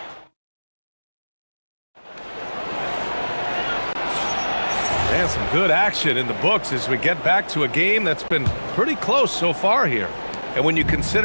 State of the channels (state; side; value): inverted; both; correlation -1.00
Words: And some good action in the books as we get back to a game that's been pretty close so far here. And when you